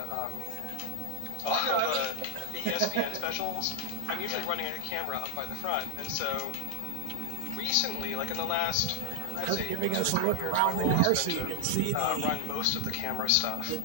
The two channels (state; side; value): different; both; correlation 0.00